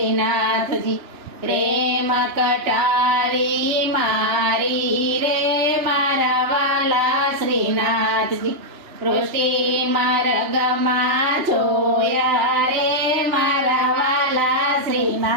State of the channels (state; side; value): late; left; 2.9 ms